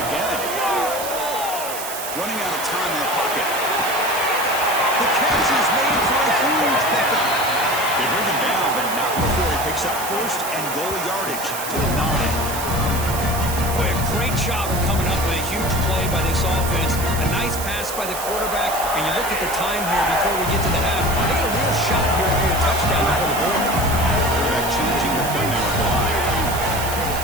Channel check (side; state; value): right; noise; hiss, 7 dB below the sound